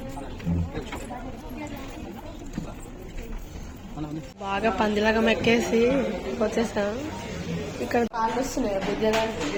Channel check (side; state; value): both; identical; correlation 1.00